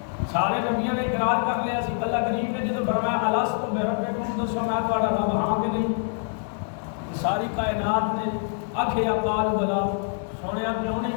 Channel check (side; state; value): right; silent; 59 dB below the other